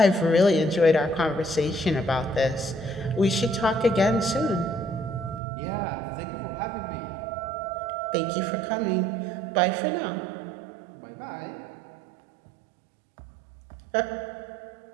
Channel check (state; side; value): drops out; left; at 5.4 s